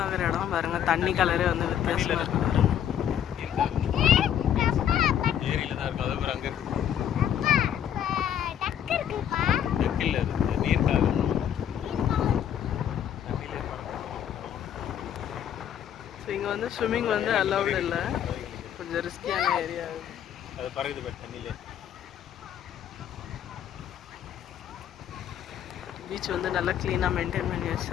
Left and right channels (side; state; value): right; quieter; 9.7 dB